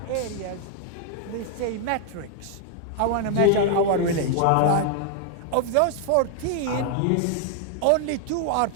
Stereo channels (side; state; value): both; different; correlation 0.00